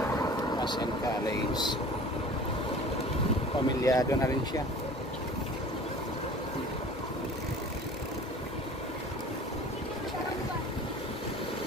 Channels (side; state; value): both; normal; correlation 0.44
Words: Masen College. Pamilyado na rin siya.